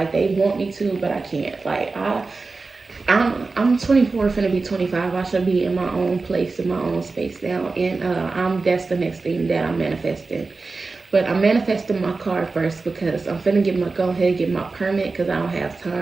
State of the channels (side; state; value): left; quieter; 3.9 dB